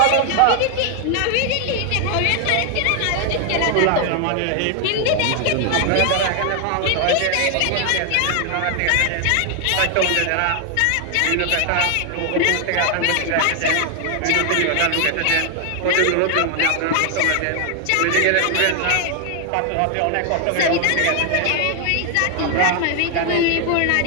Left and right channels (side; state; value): both; different; correlation 0.00